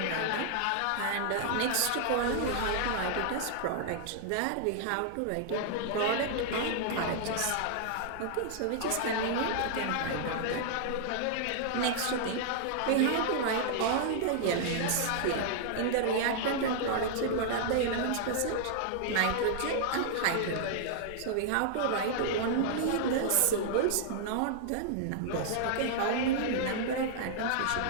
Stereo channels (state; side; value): different; both; correlation -0.01